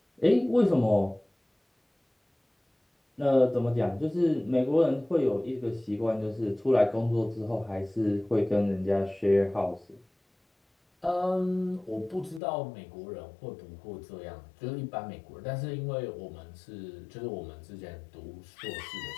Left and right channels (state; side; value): drops out; right; at 12.4 s